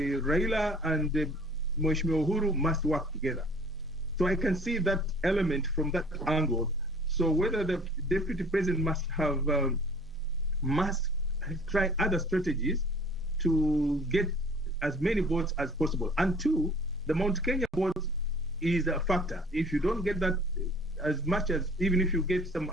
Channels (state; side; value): normal; both; correlation 0.51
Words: and Mheshimiwa Uhuru must work together. So I can see that element from that angle. So whether the deputy president must try other strategies to get as many votes as possible. And two, the Mount Kenya vote is a factor. If you don't get that as much as, even if you get some